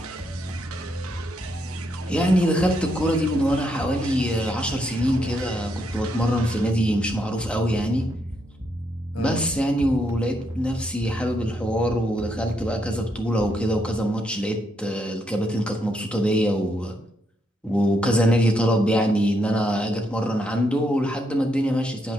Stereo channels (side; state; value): both; normal; correlation 0.77